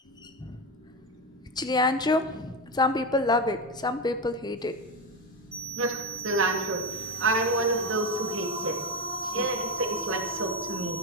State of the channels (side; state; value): both; normal; correlation 0.14